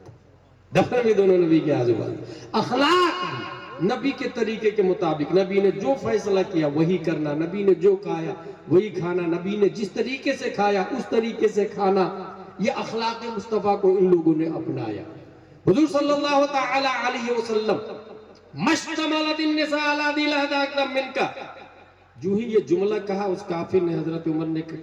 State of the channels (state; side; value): identical; both; correlation 1.00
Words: دفن بھی دونوں نبی کے آزو بازو۔ اخلاق بھی نبی کے طریقے کے مطابق، نبی نے جو فیصلہ کیا وہی کرنا، نبی نے جو کھایا وہی کھانا، نبی نے جس طریقے سے کھایا اس طریقے سے کھانا، یہ اخلاق مصطفیٰ کو ان لوگوں نے اپنایا۔ حضور صلی اللہ تعالی علیہ وسلم مشتملت النساء علی ذی لہدہ اکرم منکا، جو ہی یہ جملہ کہا اس کافر نے، حضرت عمر نے